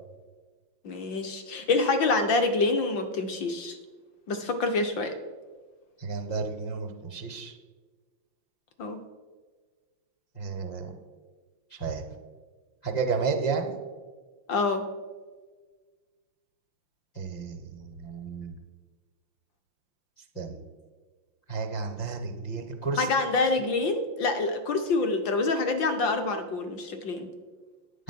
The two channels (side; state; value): right; late; 5.8 ms